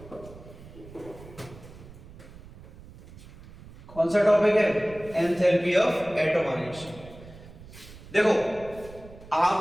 कौन सा टॉपिक है? Enthalpy of atomization. देखो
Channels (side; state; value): right; noise; rumble, 18 dB below the sound